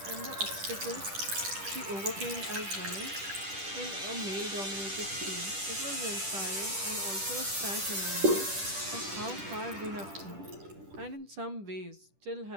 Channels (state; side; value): late; left; 10 ms